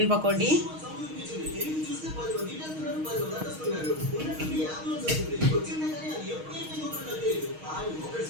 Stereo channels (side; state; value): left; late; 6.4 ms